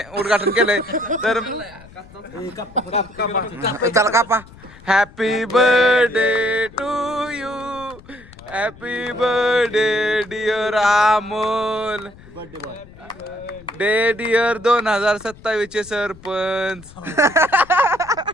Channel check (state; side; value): noise; left; rumble, 22 dB below the sound